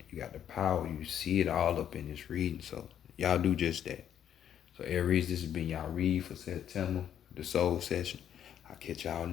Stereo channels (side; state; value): right; quieter; 9.8 dB